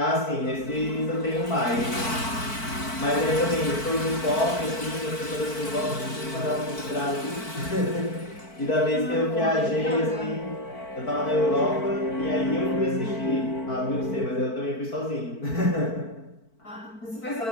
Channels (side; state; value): right; late; 4.5 ms